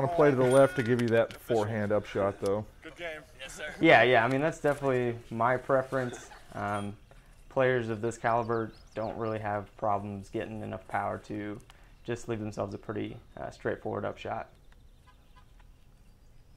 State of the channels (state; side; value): identical; both; correlation 1.00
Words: to play to the left to give you that forehand upshot though. Good game. Yes, sir. Yeah, I mean, that's definitely my preference. Players of this caliber don't really have problems getting enough power to just leave themselves a pretty straightforward upshot.